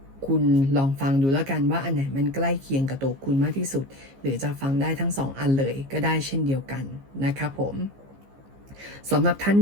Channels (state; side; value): late; left; 15 ms